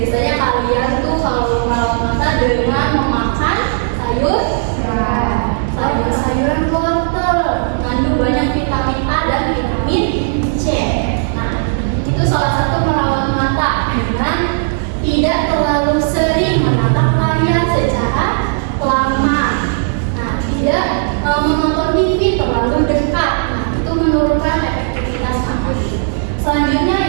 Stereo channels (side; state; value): left; silent; 70 dB below the other